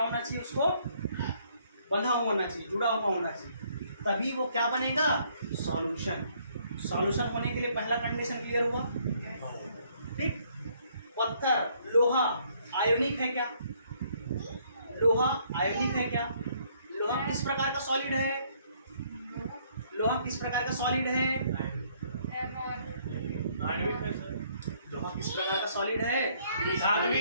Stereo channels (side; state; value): both; inverted; correlation -0.66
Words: चाहिए? उसको बंधा हुआ होना चाहिए, जुड़ा हुआ होना चाहिए, तभी वो क्या बनेगा? सॉल्यूशन। सॉल्यूशन होने के लिए पहला कंडीशन क्लियर हुआ, ठीक? पत्थर, लोहा आयोनिक है क्या? लोहा आयोनिक है क्या? लोहा किस प्रकार का सॉलिड है? लोहा किस प्रकार का सॉलिड है? लोहा किस प्रकार का सॉलिड है?